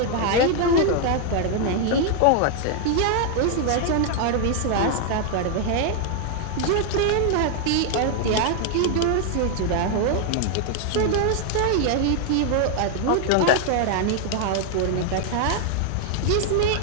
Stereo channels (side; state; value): both; different; correlation 0.00